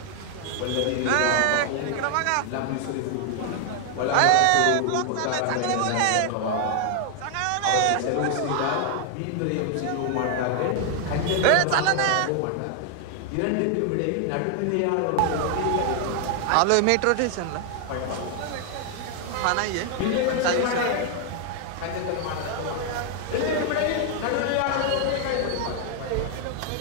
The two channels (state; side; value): different; both; correlation 0.00